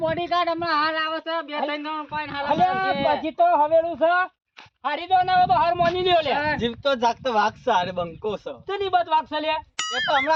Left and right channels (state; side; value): identical; both; correlation 1.00